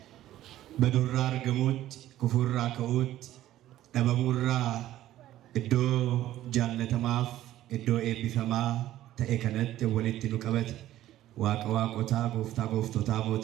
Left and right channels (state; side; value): quieter; left; 13.8 dB